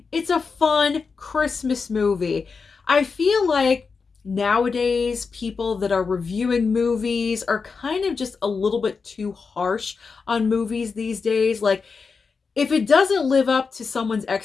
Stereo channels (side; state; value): right; quieter; 5.0 dB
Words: It's a fun Christmas movie. I feel like nowadays people that are reviewing movies are kind of just a little bit too harsh on movies these days. Like, if it doesn't live up to someone's